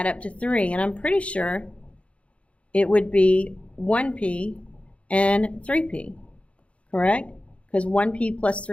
up to 3. And I'm pretty sure it would be 1p and 3p, correct? Because 1p plus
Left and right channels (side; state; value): right; late; 0.062 ms